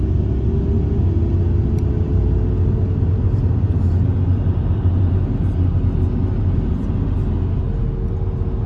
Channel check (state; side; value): identical; both; correlation 1.00